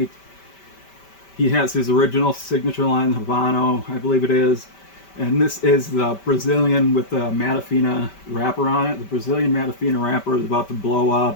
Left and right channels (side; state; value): right; late; 5.1 ms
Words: He has his original signature line, Habano, I believe it is. And this is the Brazilian with the Matafina wrapper on it. The Brazilian Matafina wrapper is about to blow